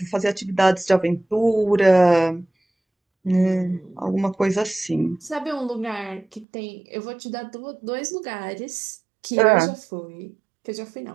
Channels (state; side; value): drops out; left; at 6.5 s